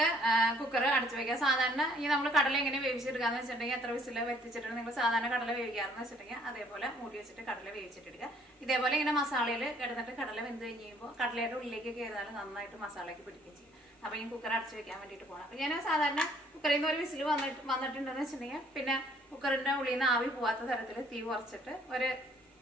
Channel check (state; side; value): normal; both; correlation 0.61